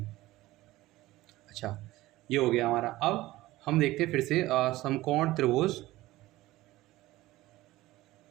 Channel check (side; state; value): left; quieter; 17.4 dB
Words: अच्छा ये हो गया हमारा। अब हम देखते हैं फिर से समकोण त्रिभुज